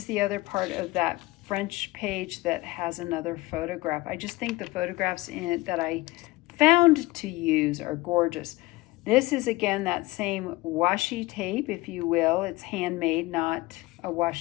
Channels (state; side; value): quieter; right; 20.7 dB